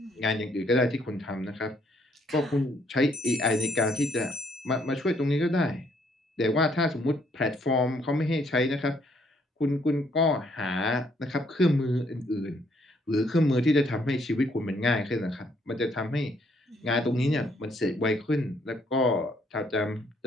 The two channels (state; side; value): normal; both; correlation 0.68